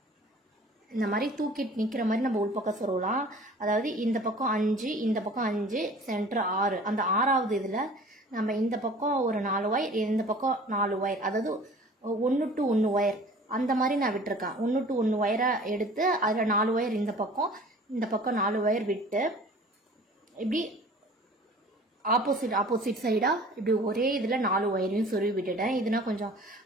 இந்த மாதிரி தூக்கிட்டு நிற்கிற மாதிரி நம்ம உள்பக்கம் சொருவலாம். அதாவது இந்த பக்கம் 5 இந்த பக்கம் 5 சென்டர் 6, அந்த 6வது இதில் நம்ம இந்த பக்கம் ஒரு 4 ஒயர், இந்த பக்கம் 4 ஒயர், அதாவது 1 to 1 ஒயர் அந்த மாதிரி நான் விட்டுருக்கேன். 1 to 1 ஒயரை எடுத்து அதில் 4 ஒயர் இந்த பக்கம் 4 ஒயர் விட்டு இப்படி ஆப்போசிட் சைடாக இப்படி ஒரே இதில் 4 ஒயரையும் சொருவி விட்டுட்டேன். இதுனா கொஞ்சம்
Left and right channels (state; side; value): normal; both; correlation 0.47